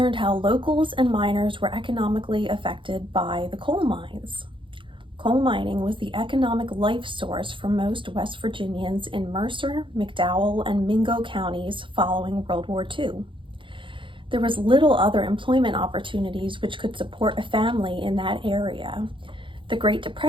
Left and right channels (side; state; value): left; late; 0.24 ms